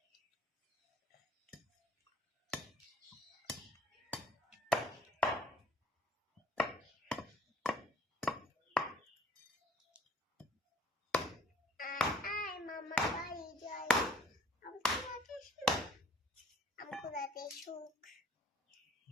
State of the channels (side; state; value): both; normal; correlation 0.55